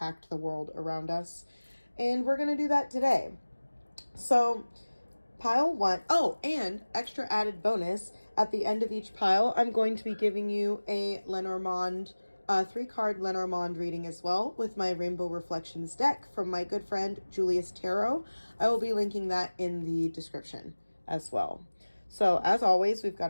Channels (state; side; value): inverted; both; correlation -1.00